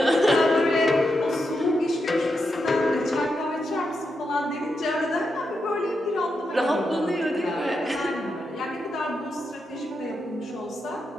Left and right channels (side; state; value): both; normal; correlation 0.85